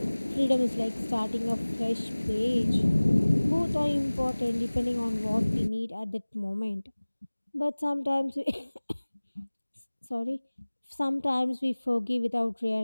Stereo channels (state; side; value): inverted; both; correlation -1.00